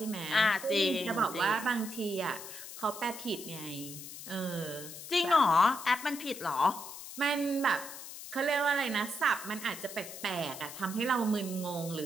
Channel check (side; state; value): left; noise; hiss, 11 dB below the sound